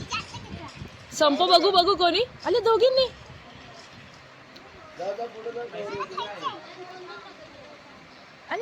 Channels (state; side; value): identical; both; correlation 1.00